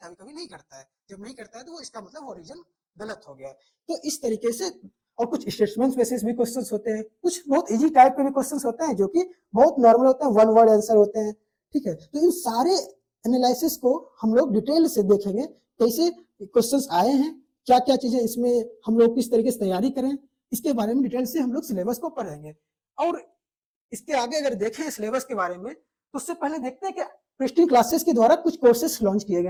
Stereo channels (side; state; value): both; identical; correlation 1.00